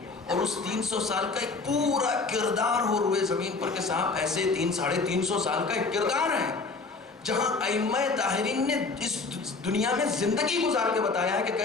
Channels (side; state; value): right; quieter; 4.0 dB